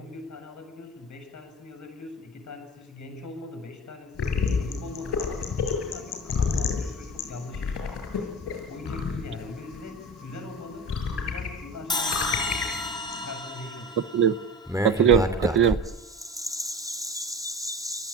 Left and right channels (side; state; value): both; normal; correlation 0.32